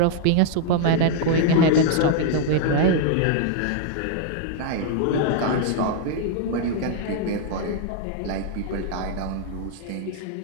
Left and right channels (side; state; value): both; different; correlation 0.00